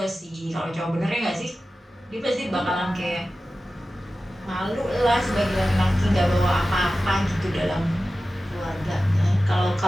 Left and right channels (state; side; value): normal; both; correlation 0.95